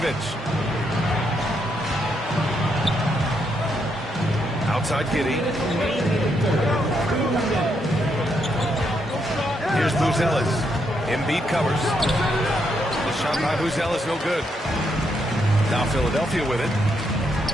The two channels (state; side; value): normal; both; correlation 0.78